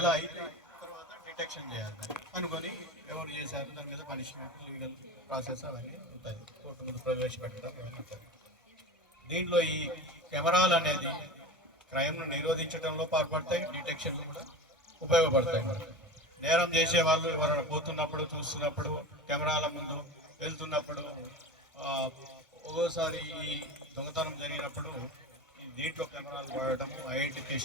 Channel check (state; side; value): normal; both; correlation 0.31